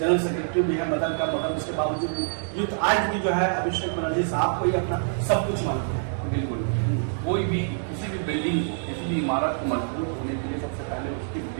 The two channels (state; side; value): silent; left; digital silence